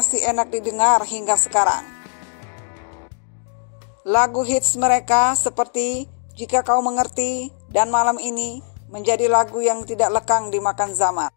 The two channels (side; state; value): right; silent; digital silence